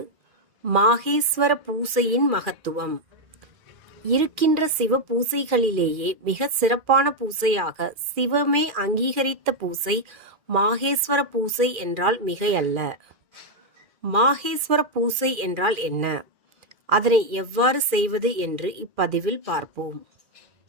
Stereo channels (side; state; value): left; late; 2.4 ms